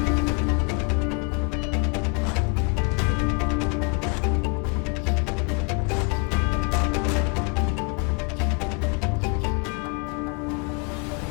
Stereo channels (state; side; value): quieter; right; 31.1 dB